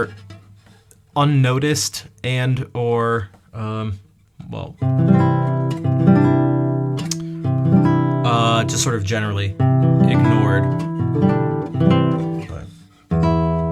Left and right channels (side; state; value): both; identical; correlation 1.00